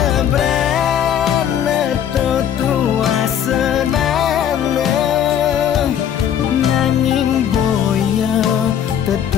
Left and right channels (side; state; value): right; quieter; 9.4 dB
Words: brana tua senana, nanging boya